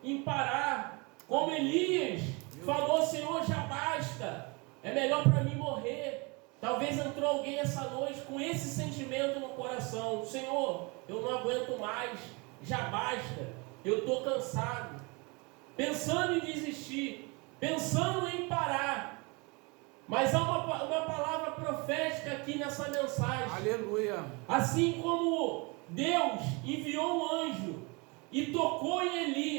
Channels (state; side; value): quieter; left; 28.7 dB